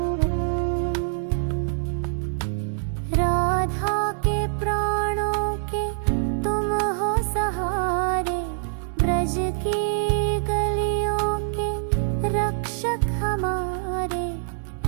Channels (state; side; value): silent; left; 60 dB below the other